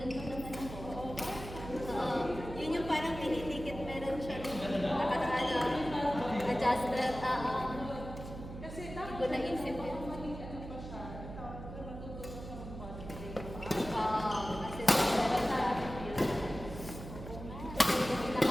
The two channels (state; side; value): noise; right; hum, 10 dB below the sound